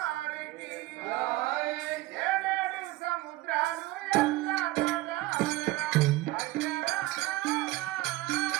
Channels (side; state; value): left; quieter; 18.1 dB